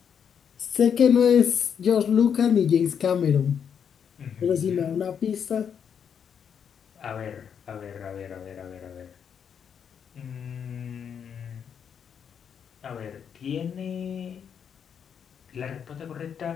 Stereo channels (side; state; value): right; quieter; 7.6 dB